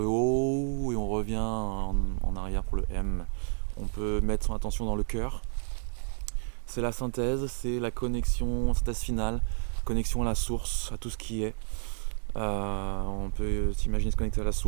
O et on revient en arrière pour le M. On peut mettre son attention dans le cœur. C'est la synthèse, c'est la connexion, synthèse finale, connexion à la source, à tout ce qui est. On peut s'imaginer se connecter à la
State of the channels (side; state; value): left; silent; digital silence